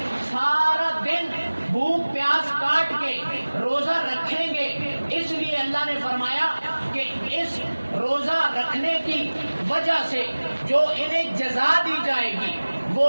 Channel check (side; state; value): both; inverted; correlation -1.00